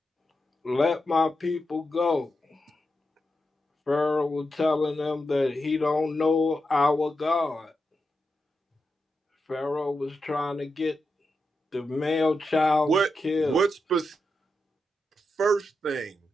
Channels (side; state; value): both; normal; correlation 0.87